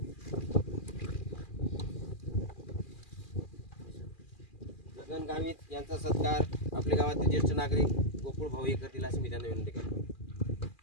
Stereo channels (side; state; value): right; late; 2.4 ms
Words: गावित यांचा सत्कार आपल्या गावातील ज्येष्ठ नागरिक गोकुळ भाऊ करतील अशी मी त्यांना विनंती करतो.